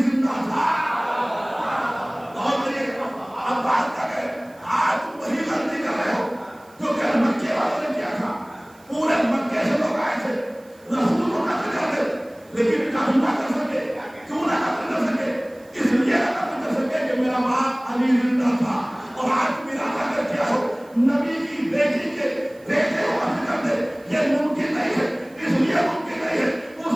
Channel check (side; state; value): right; noise; hiss, 29 dB below the sound